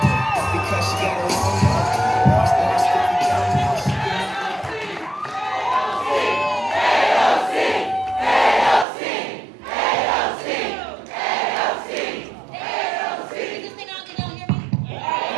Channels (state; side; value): drops out; left; at 8.8 s